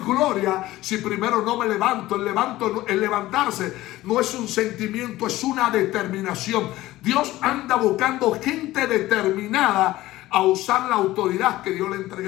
si primero no me levanto. El levantarse no es un sentimiento, es una determinación. Dios anda buscando gente determinada a usar la autoridad que Dios le ha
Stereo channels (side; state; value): right; quieter; 16.6 dB